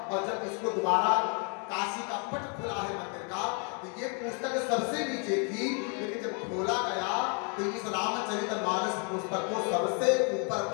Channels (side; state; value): right; quieter; 38.3 dB